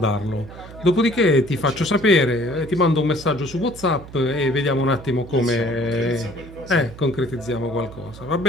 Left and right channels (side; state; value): right; noise; hum, 16 dB below the sound